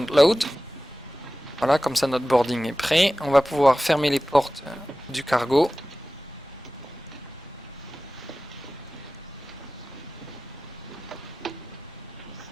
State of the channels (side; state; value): both; normal; correlation 0.96